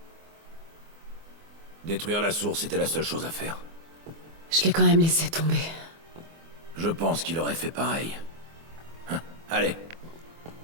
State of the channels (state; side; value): late; left; 24 ms